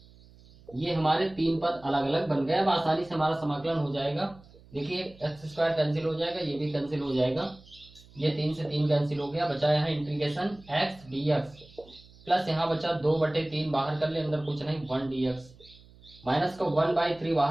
ये हमारे 3 पद अलग अलग बन गए। अब आसानी से हमारा समाकलन हो जाएगा। देखिए x² कैंसिल हो जाएगा, ये भी कैंसिल हो जाएगा, ये 3 से 3 कैंसिल हो गया, बचा यहाँ इंटीग्रेशन x dx, प्लस यहाँ बचा 2/3 बाहर कर ले, अंदर कुछ नहीं 1 dx, माइनस का 1/3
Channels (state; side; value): noise; right; hum, 24 dB below the sound